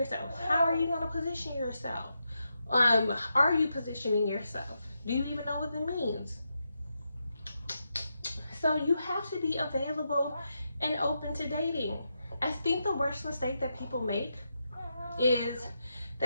How are you going to position yourself? Are you positioning yourself? Do you even know what it means? So you have to be available and open to dating. I think the worst mistake that people make is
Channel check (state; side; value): inverted; both; correlation -0.85